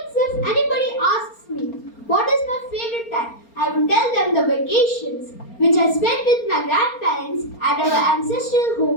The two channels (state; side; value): late; right; 4.3 ms